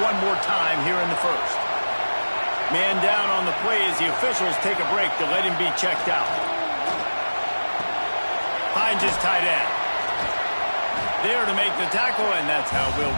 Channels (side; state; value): both; inverted; correlation -1.00